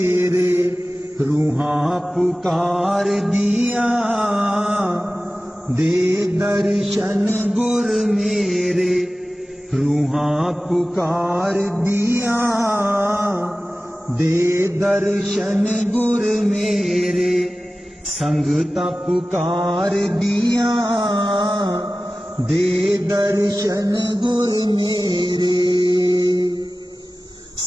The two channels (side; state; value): both; normal; correlation 0.96